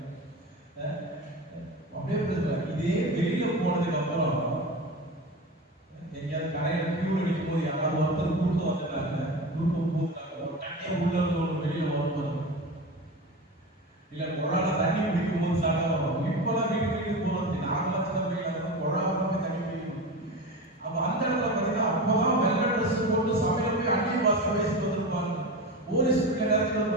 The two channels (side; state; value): both; normal; correlation 0.26